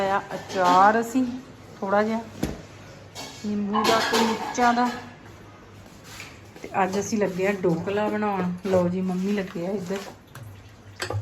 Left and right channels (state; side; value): identical; both; correlation 1.00